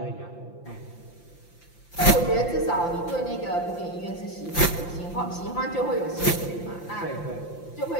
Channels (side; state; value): right; late; 5.8 ms